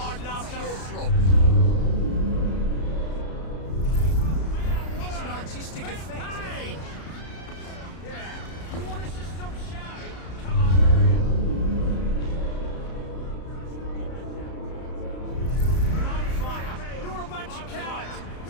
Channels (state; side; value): late; right; 33 ms